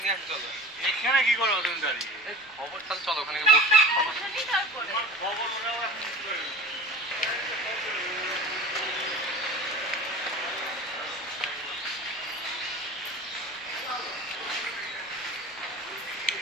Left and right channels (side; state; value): both; normal; correlation 0.38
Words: নিয়ে আসতে চলো। এখানে কি করো তুমি দাঁড়িয়ে? খবর তাহলে চলো, ওখানে বসে খবর